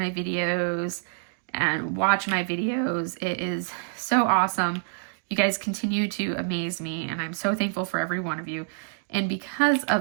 videos, and watch my videos. It is so awesome. You guys continue to amaze me, and I'm so thankful for every one of you. And because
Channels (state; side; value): silent; left; digital silence